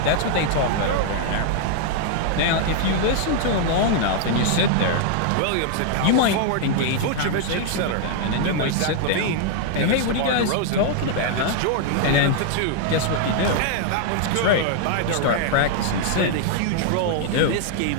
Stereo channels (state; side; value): different; both; correlation 0.00